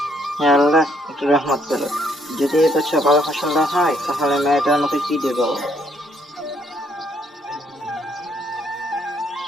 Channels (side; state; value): both; normal; correlation 0.70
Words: হে আল্লাহ, একটু রহমত করো। যদি এই বছর ভালো ফসল না হয় তাহলে মেয়েটার আমাকে কি দেবো?